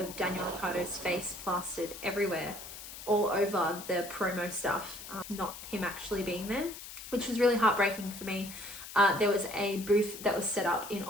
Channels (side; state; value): left; noise; hiss, 12 dB below the sound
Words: Daniel Ricciardo's face plastered everywhere, all over the promo stuff, not him actually being there, which was really heartbreaking for me. There was a booth that was set up in